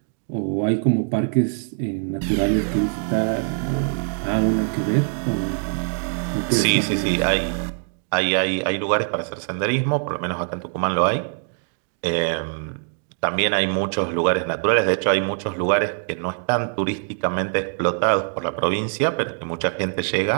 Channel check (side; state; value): left; silent; 62 dB below the other